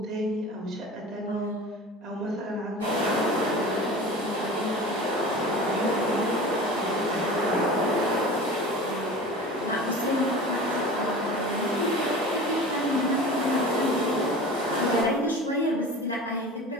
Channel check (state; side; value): normal; both; correlation 0.36